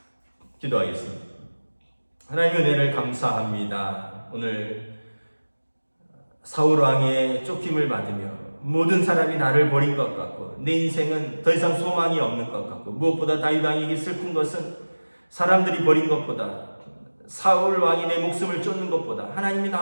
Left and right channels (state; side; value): inverted; both; correlation -1.00